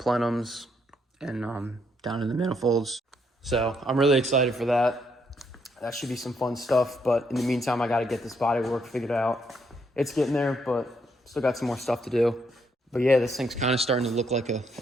and down to the manifolds. So I'm really excited for that. That should be some fun stuff, but in the meantime, I got to get this bodywork figured out. It's getting there, but still got some more stuff to do. But yeah, this thing's kind of starting to look like an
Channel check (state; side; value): normal; both; correlation 0.74